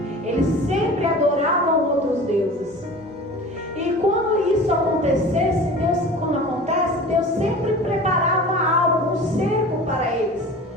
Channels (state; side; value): normal; both; correlation 0.38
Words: Eles sempre adoravam outros deuses. E quando isso acontecesse, Deus sempre preparava algo, um cerco para eles